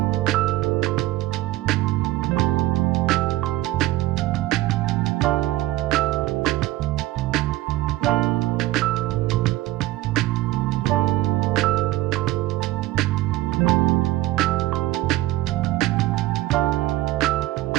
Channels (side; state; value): left; quieter; 16.8 dB